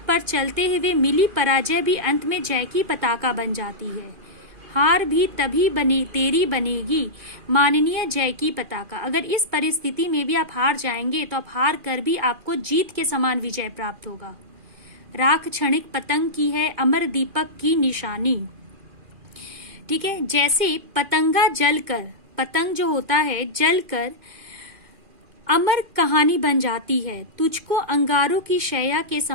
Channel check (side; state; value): left; late; 2.4 ms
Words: पर चलते हुए मिली पराजय भी अंत में जय की पताका बन जाती है। हार भी तभी तेरी बनेगी माननीय जय की पताका। अगर इस परिस्थिति में भी आप हार जाएंगे तो आप हार कर भी आपको जीत के समान विजय प्राप्त होगा। राख क्षणिक पतंग की है अमर दीपक की निशानी। ठीक है, जैसे पतंगा जलकर, पतंग जो होता है जलकर अमर कहानी बन जाती है, तुझको अंगारों की शैया के